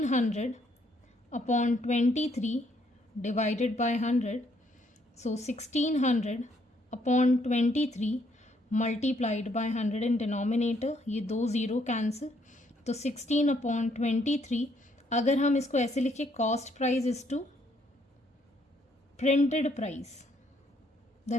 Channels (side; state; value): both; normal; correlation 0.69